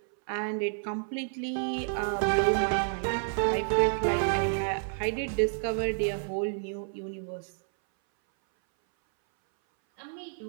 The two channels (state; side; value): silent; left; 58 dB below the other